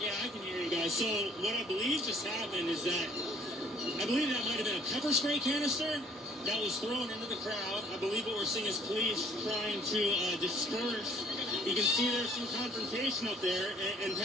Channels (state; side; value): normal; both; correlation 0.59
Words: I can hear you guys. So what I believe just happened is that I believe that might have been a pepper spray canister that was thrown into the crowd. I believe what we're seeing is police trying to disperse. You can see there's some confrontation up there, and